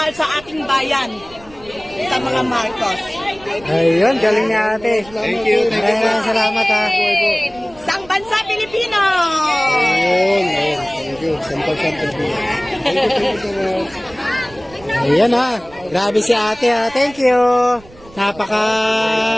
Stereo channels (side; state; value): right; noise; rumble, 23 dB below the sound